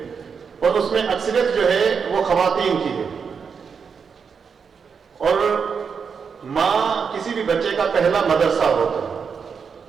और उसमें अक्सरियत जो है वो खवातीन की है। और माँ किसी भी बच्चे का पहला मदरसा होता है।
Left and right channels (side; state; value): left; quieter; 6.1 dB